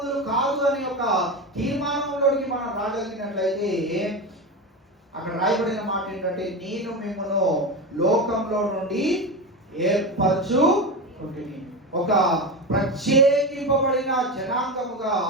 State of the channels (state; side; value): normal; both; correlation 0.20